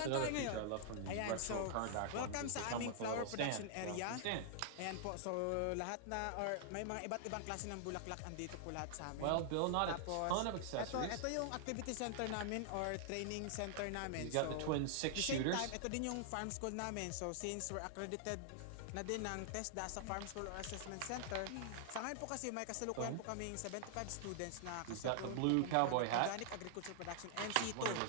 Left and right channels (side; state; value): both; different; correlation -0.01